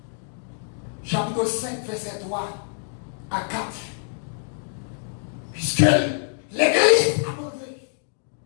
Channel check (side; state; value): right; silent; digital silence